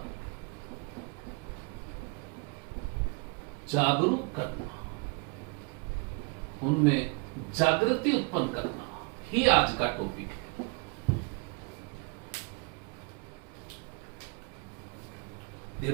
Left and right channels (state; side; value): quieter; left; 31.8 dB